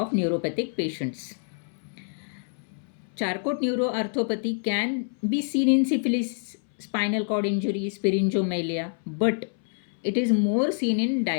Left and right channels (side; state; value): right; silent; 60 dB below the other